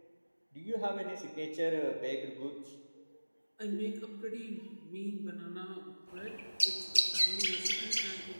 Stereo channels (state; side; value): inverted; both; correlation -1.00